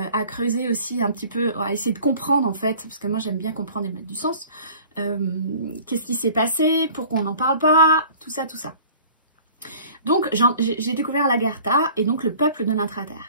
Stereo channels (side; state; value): both; inverted; correlation -0.48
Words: creuser aussi un petit peu, à essayer de comprendre en fait, parce que moi j'aime bien comprendre et mettre du sens. Qu'est-ce qui s'est passé, pourquoi on n'en parle pas, tout ça. Donc j'ai découvert l'Agartha et donc le peuple de